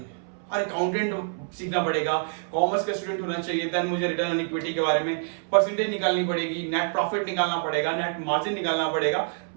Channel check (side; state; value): left; silent; 61 dB below the other